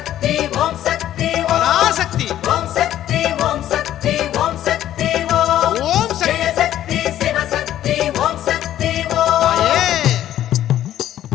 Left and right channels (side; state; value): right; quieter; 12.2 dB